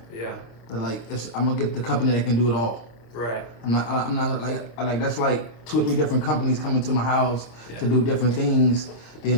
yeah, Like I'm gonna get the company that can do it all. right. I'm not like that's like 2 or 3 different companies coming to my house to do different things.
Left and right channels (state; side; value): late; right; 26 ms